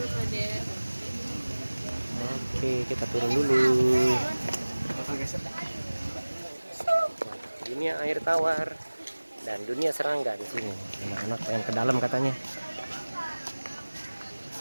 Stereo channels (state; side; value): inverted; both; correlation -1.00